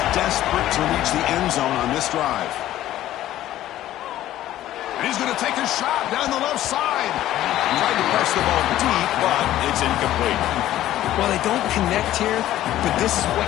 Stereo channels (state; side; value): quieter; right; 13.6 dB